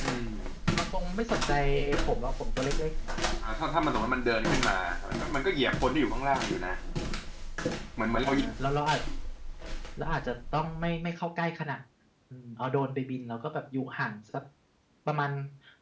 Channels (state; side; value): identical; both; correlation 1.00